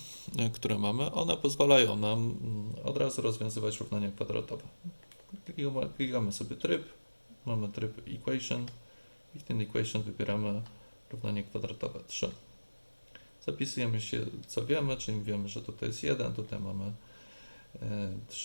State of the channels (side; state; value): both; inverted; correlation -1.00